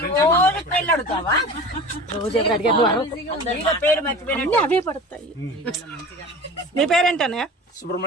రోజు ఎవరు అడిగారు? అవే పడతాయి. మీ పేరేంటన్నయ్య?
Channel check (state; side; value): normal; both; correlation 0.37